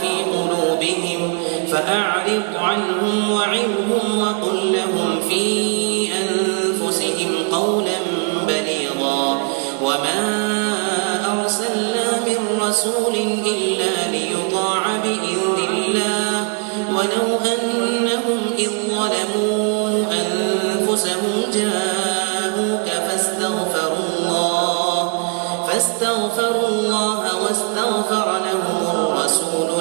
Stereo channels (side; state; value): left; quieter; 35.6 dB